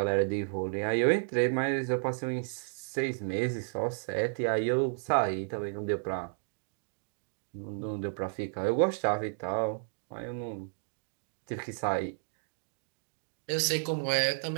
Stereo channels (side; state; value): left; silent; digital silence